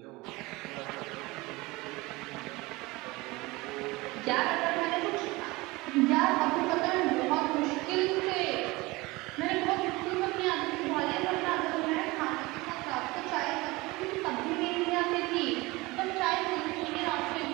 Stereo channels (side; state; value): left; quieter; 22.3 dB